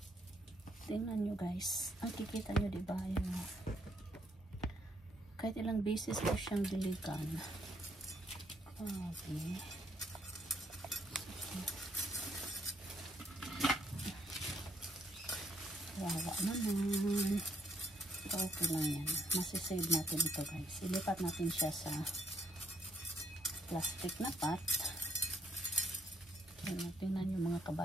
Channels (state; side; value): normal; both; correlation 0.71